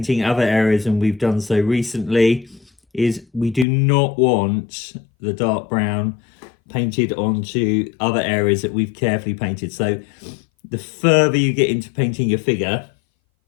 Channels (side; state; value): right; drops out; at 3.7 s